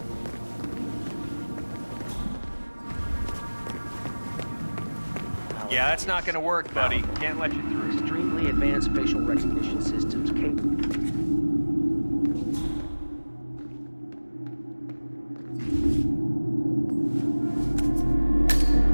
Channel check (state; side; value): inverted; both; correlation -1.00